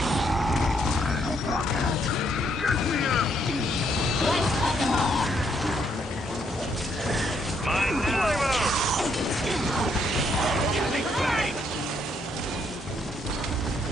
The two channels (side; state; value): both; normal; correlation 0.72